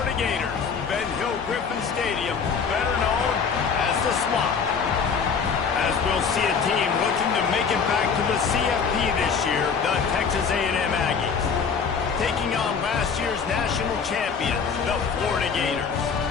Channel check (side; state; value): right; quieter; 6.0 dB